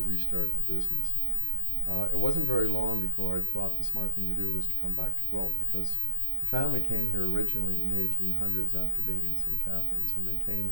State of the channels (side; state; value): both; normal; correlation 0.68